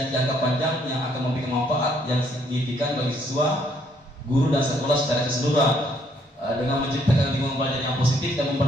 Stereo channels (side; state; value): both; normal; correlation 0.68